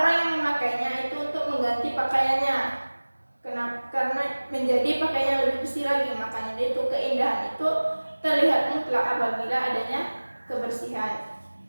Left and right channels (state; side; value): inverted; both; correlation -1.00